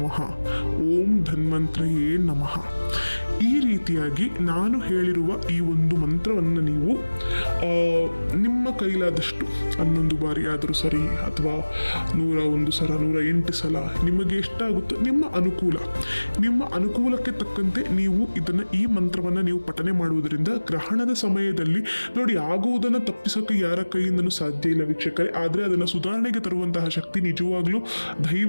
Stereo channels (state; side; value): inverted; both; correlation -1.00